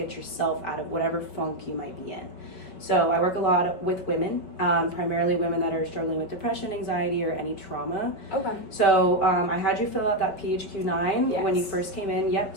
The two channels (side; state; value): right; late; 5.5 ms